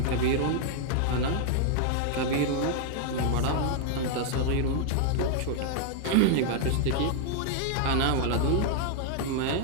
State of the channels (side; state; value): both; different; correlation 0.00